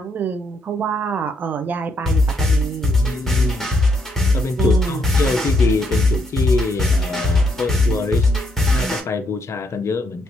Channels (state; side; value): normal; both; correlation 0.75